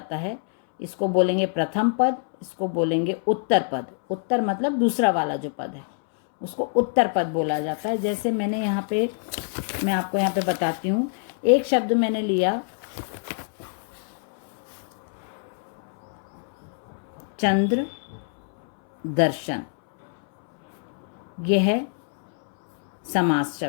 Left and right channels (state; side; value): silent; right; 62 dB below the other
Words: है, इसको बोलेंगे प्रथम पद, इसको बोलेंगे उत्तर पद। उत्तर मतलब दूसरा वाला जो पद है उसको उत्तर पद बोला जाता है। जैसे मैं आपको यहाँ पे बताती हूँ। एक शब्द मैंने लिया चंद्र दर्शन, यह है समास